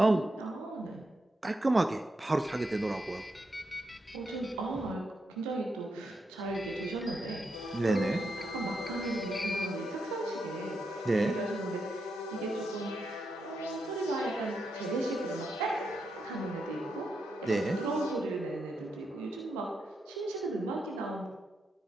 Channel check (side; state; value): both; normal; correlation 0.83